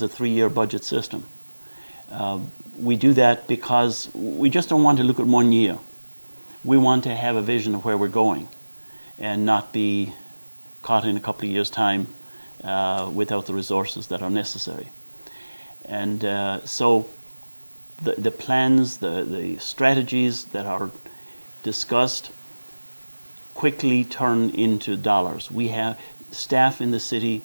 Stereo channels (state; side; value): inverted; both; correlation -1.00